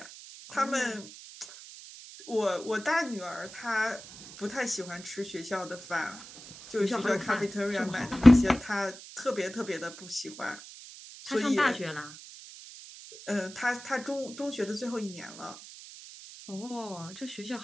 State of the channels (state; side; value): noise; right; hiss, 16 dB below the sound